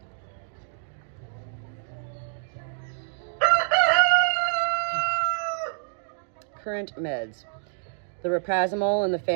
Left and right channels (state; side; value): silent; left; digital silence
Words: Current meds. The raprazimol and the